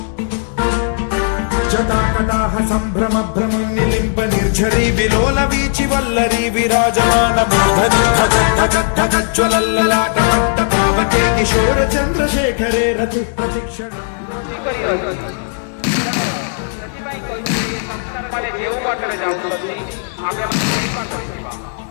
जटाकटाह सम्भ्रम भ्रमन्निलिम्ब निर्झरी विलोल वीचि वल्लरी विराजमान मूर्धनि धगज्ज्वलल्ललाटमट्ट पावके किशोर चन्द्रशेखरे रति प्रशिक्षण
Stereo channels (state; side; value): silent; right; digital silence